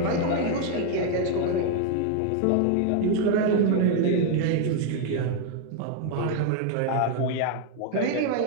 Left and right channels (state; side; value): different; both; correlation 0.00